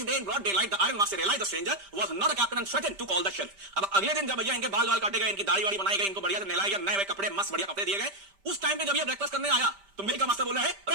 day in broad daylight the iron master realised the stranger was not a captain and threatened to call the sheriff. अब अगले दिन जब भैया इनके बाल काटे गए, इनकी दाढ़ी वाड़ी बनाई गई, इनको बढ़िया से नहलाया गया, नए कपड़े, मस्त बढ़िया कपड़े दिए गए, उस टाइम पे जब ये ब्रेकफास्ट करने आया तो मिल का मास्टर बोल रहा है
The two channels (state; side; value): late; left; 5.1 ms